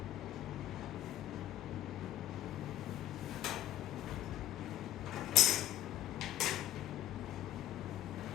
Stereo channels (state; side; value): quieter; right; 12.5 dB